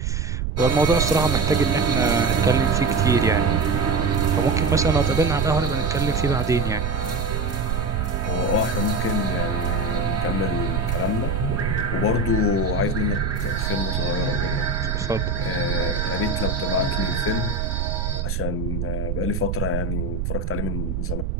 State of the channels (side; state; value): right; noise; rumble, 1 dB below the sound